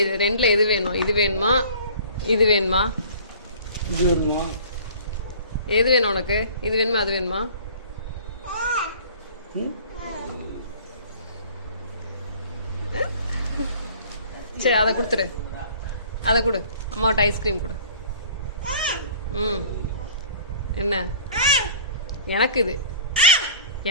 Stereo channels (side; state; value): both; inverted; correlation -0.47